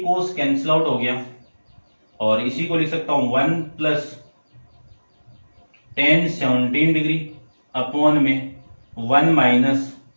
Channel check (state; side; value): inverted; both; correlation -1.00